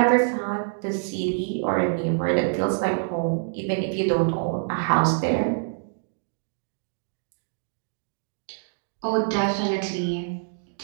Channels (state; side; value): silent; left; digital silence